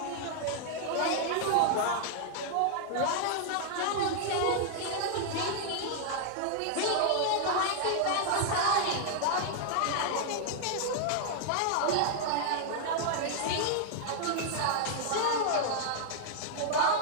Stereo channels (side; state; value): both; different; correlation -0.01